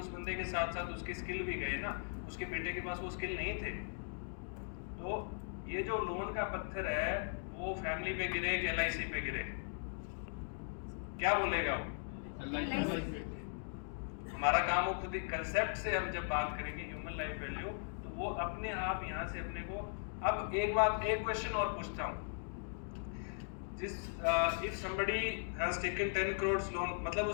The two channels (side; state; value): right; silent; digital silence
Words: बंदे के साथ साथ उसकी स्किल भी गए ना, उसके बेटे के पास वो स्किल नहीं थे। तो ये जो लोन का पत्थर है वो फैमिली पे गिरे कि LIC पे गिरे? क्या बोलेगा वो? हमारा काम हो खुद ही कंसेप्ट से, हम जब बात करेंगे ह्यूमन लाइफ वैल्यू, तो वो अपने आप यहाँ से अपने को। अब एक क्वेश्चन और पूछता हूँ, if somebody has taken 10 crore loan, मतलब